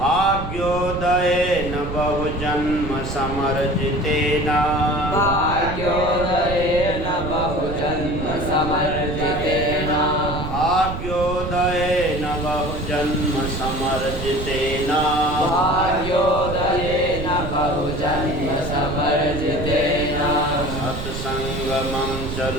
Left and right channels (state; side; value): noise; right; rumble, 6 dB below the sound